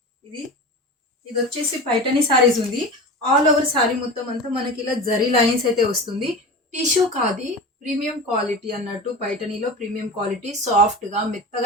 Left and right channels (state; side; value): normal; both; correlation 0.30